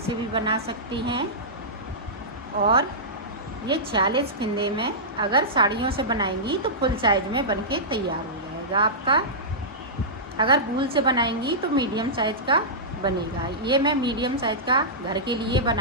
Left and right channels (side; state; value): both; normal; correlation -0.15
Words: भी बना सकती हैं और ये 46 फिंदे में अगर साड़ियों से बनाएंगी तो फुल साइज में बनके तैयार हो जाएगा आपका। अगर वूल से बनाएंगी तो मीडियम साइज का बनेगा। ये मैं मीडियम साइज का घर के लिए